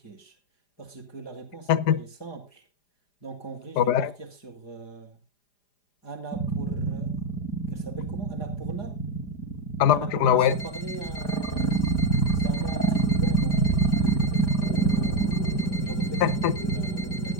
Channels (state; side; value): late; right; 4.9 ms